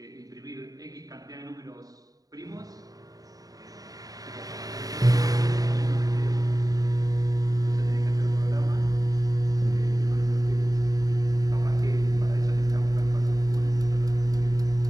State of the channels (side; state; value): left; late; 0.18 ms